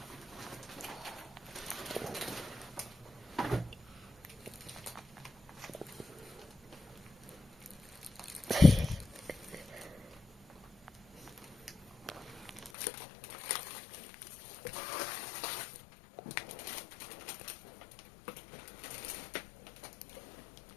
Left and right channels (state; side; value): drops out; right; at 12.7 s